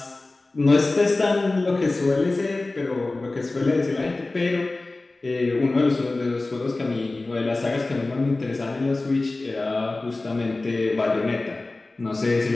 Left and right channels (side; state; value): right; quieter; 3.1 dB